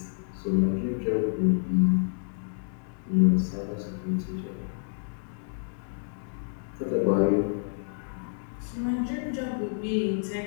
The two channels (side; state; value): right; silent; digital silence